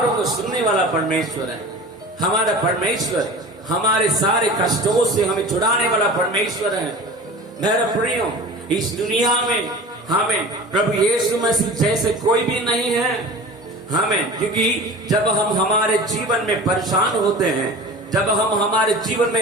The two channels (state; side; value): normal; both; correlation 0.37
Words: को सुनने वाला परमेश्वर है। हमारा परमेश्वर हमारे सारे कष्टों से हमें छुड़ाने वाला परमेश्वर है। मेरा प्रियो, इस दुनिया में हमें प्रभु यीशु मसीह जैसे कोई भी नहीं है। हमें, क्योंकि जब हम हमारे जीवन में परेशान होते हैं, जब हम हमारे जीवन